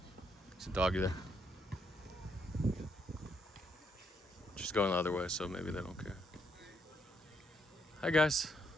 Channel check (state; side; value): normal; both; correlation 0.75